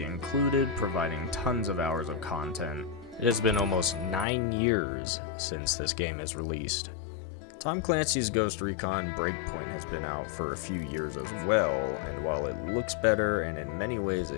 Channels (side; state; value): right; drops out; at 4.2 s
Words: included, providing tons of hours of content. It has been almost 9 years since this game is released. Tom Clancy's Ghost Recon Breakpoint has been out for a few years as well, and while it looks better and in many ways